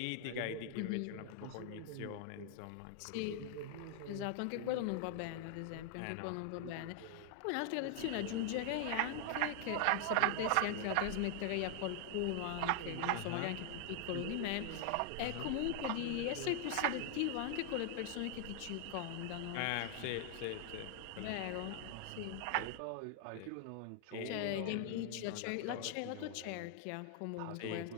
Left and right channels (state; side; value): different; both; correlation 0.00